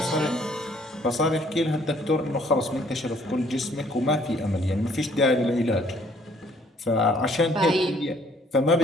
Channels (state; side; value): normal; both; correlation 0.62